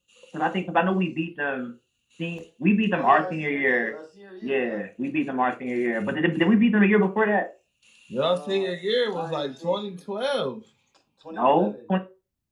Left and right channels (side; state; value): both; identical; correlation 1.00